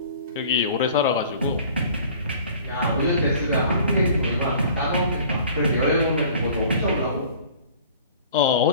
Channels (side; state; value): both; inverted; correlation -0.48